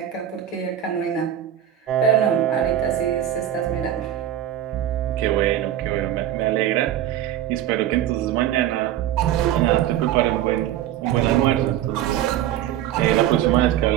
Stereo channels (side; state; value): left; quieter; 11.6 dB